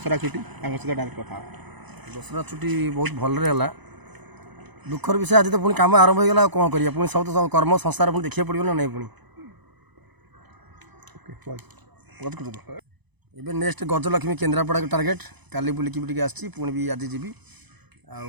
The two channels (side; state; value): left; late; 1.0 ms